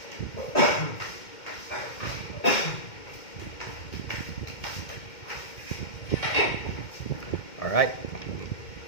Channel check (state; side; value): late; right; 2.1 ms